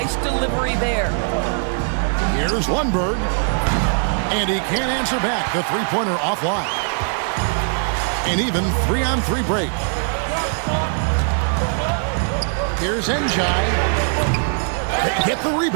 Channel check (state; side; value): silent; left; 60 dB below the other